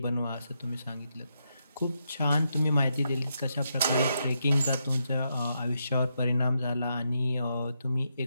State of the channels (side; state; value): both; inverted; correlation -0.82